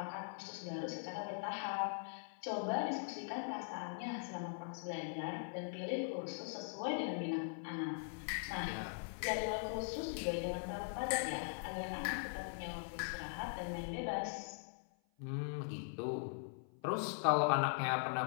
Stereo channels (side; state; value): right; silent; 50 dB below the other